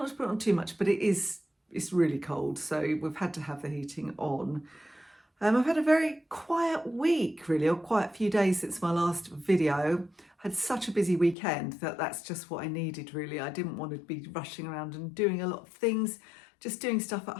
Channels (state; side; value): drops out; right; at 11.4 s